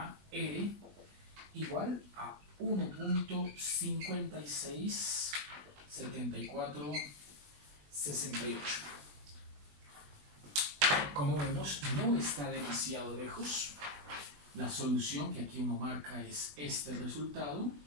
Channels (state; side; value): late; left; 20 ms